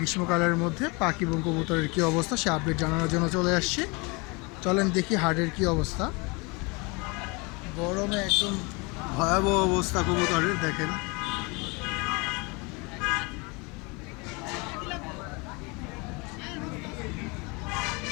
মধ্যে পাখি এবং কবুতরের কী অবস্থা সে আপডেট জানানোর জন্য চলে আসছি। চলেন দেখি হাটের কী অবস্থা। গরমে একদম ভয়াবহ অবস্থা কবুতরের, দেখেন।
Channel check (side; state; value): right; quieter; 28.4 dB